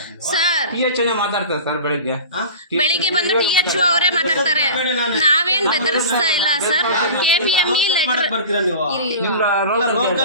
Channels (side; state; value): both; inverted; correlation -0.35